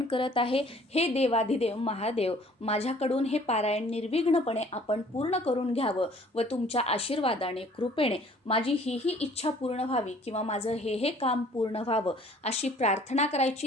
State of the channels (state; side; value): normal; both; correlation 0.55